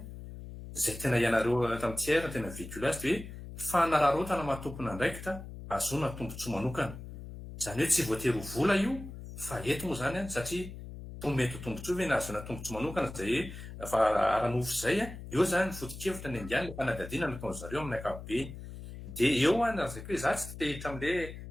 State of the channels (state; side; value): noise; left; hum, 12 dB below the sound